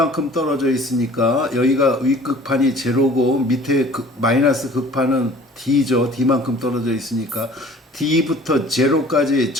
떨어져 있으니까 여기가 윗극판이 제로고 밑에 마이너스 극판은 D죠. D만큼 떨어져 있으니까 D부터 제로까지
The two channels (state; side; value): normal; both; correlation 0.49